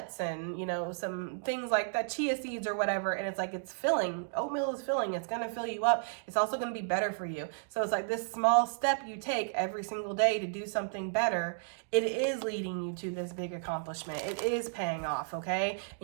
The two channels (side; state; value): left; silent; digital silence